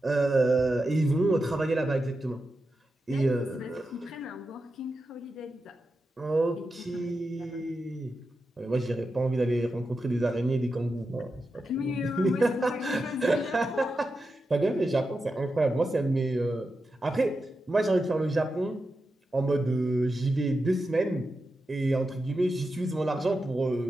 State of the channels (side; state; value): both; normal; correlation 0.89